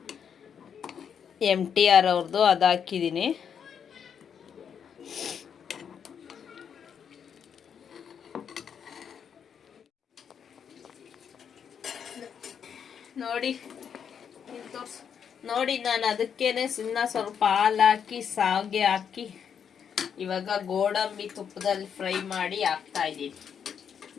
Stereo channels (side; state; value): right; quieter; 7.6 dB